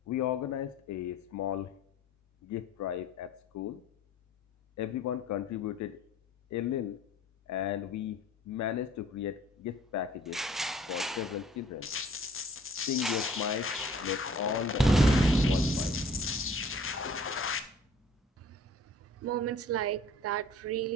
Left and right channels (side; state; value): both; normal; correlation 0.51